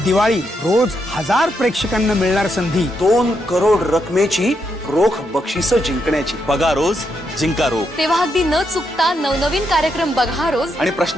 रोज 1000 प्रेक्षकांना मिळणार संधी. 2 करोड रकमेची रोख बक्षिसं जिंकण्याची. बघा रोज, जिंका रोख. तेव्हा अगदी न चुकता नवनवीन कार्यक्रम बघा रोज आणि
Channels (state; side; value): normal; both; correlation 0.80